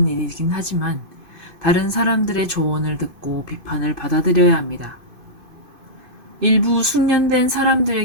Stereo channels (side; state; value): left; late; 2.5 ms